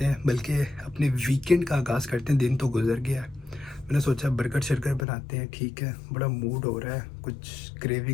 हैं, बल्कि अपने वीकेंड का आगाज़ करते हैं। दिन तो गुजर गया है, मैंने सोचा बर्गर शर्गर बनाते हैं। ठीक है, बड़ा मूड हो रहा है, कुछ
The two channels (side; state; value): right; drops out; at 5.1 s